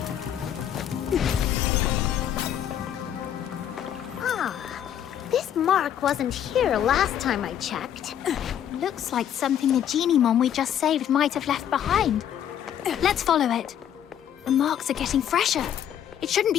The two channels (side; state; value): right; quieter; 10.0 dB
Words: This mark wasn't here last time I checked. Looks like something the Geniemon we just saved might have left behind. Let's follow it. The marks are getting fresher. It shouldn't